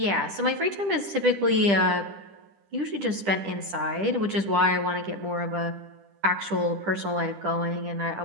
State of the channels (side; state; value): left; late; 10 ms